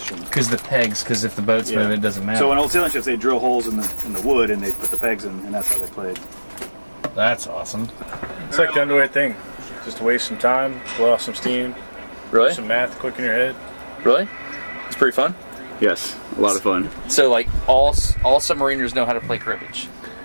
Because the pegs, because if the boat's moving, it doesn't matter. So on old sailing ships, they drill holes in the wood and they put the pegs in, and that's how they played. That's awesome. It's like the underway thing. Just to waste some time, blow off some steam. Really? Do some math quick in your head. Really? It's pretty fun. Yes, a lot of fun. So, like, all submariners know how to play cribbage.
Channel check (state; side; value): inverted; both; correlation -1.00